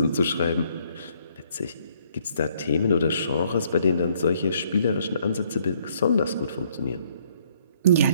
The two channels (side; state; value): both; inverted; correlation -0.66